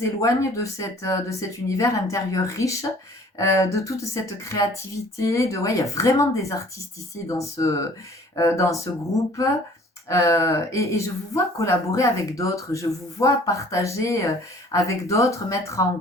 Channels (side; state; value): both; normal; correlation 0.53